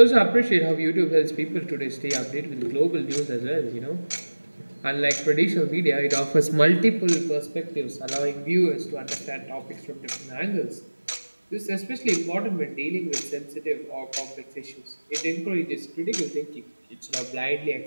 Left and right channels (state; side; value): inverted; both; correlation -1.00